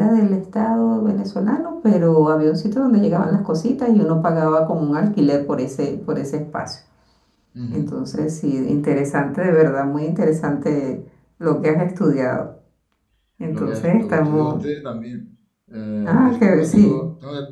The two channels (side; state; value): both; identical; correlation 1.00